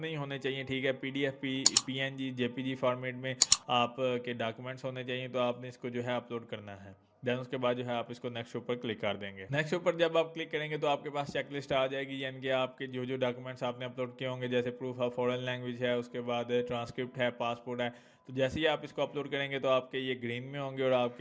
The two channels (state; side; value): identical; both; correlation 1.00